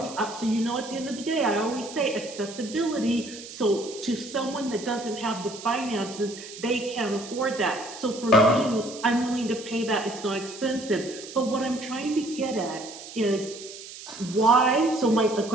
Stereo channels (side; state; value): right; noise; hiss, 14 dB below the sound